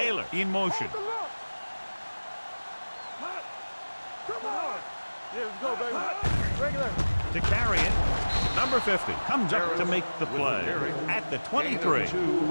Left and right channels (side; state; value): both; inverted; correlation -1.00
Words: in motion. Hold the look. Come on. Yeah, let's go, baby. Regular. To carry it. Number 50 comes up to make the play at the 23.